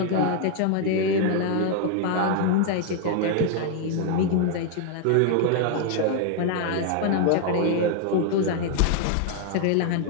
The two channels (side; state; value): both; different; correlation 0.00